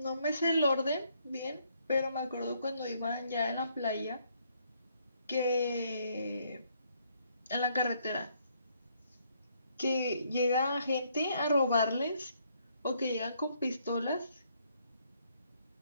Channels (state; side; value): inverted; both; correlation -0.70